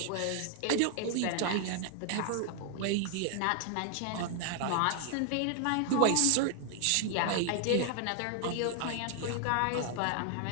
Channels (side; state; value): both; different; correlation 0.00